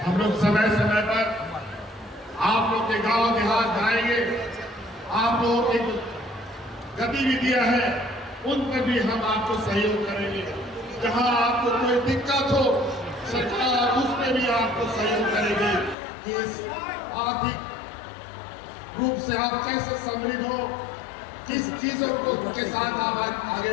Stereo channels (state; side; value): drops out; right; at 16.0 s